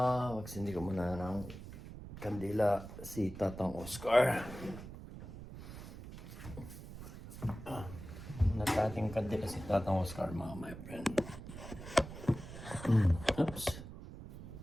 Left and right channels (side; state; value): right; noise; rumble, 12 dB below the sound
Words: Magsindi ko muna ng kandila si Tatang Oscar. Natating kandila si Tatang Oscar mga kamay-friend. Oops.